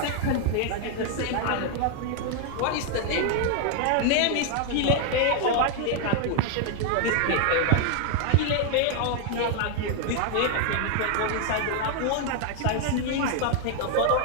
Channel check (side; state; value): both; different; correlation 0.00